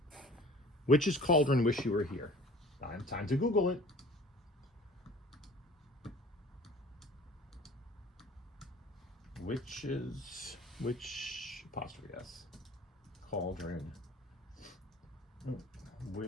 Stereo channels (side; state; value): both; normal; correlation 0.47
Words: Witch's Cauldron, Wish You Were Here. Time to Google it. Witch, apostrophe S. Cauldron.